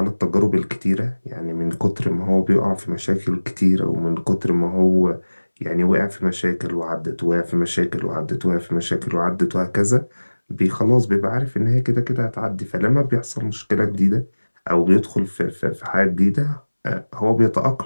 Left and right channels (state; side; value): inverted; both; correlation -1.00